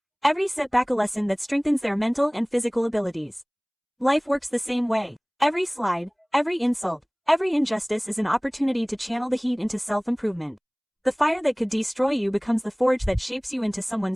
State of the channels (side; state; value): both; identical; correlation 1.00